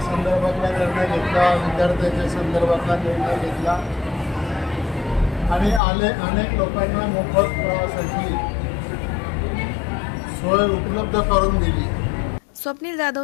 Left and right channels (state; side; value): drops out; right; at 5.8 s